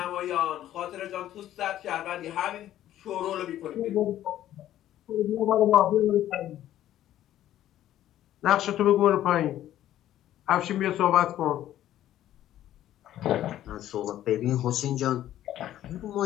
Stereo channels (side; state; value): right; quieter; 12.6 dB